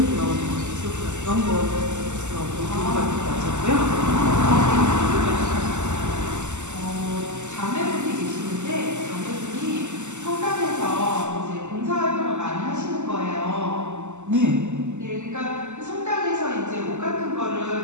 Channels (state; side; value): late; left; 0.84 ms